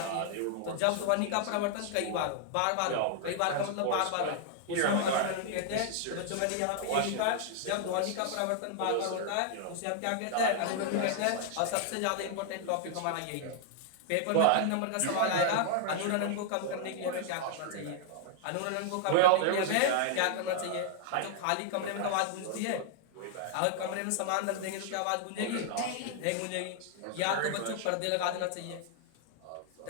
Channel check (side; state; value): both; different; correlation -0.01